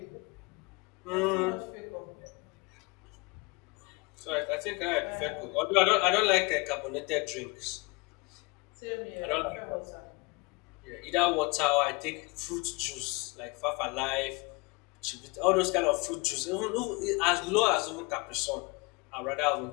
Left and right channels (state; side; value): quieter; right; 28.0 dB